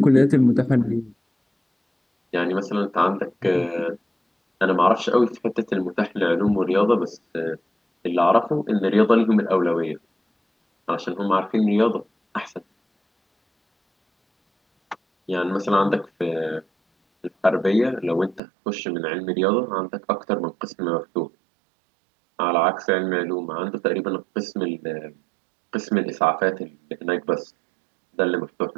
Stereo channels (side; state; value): left; drops out; at 18.4 s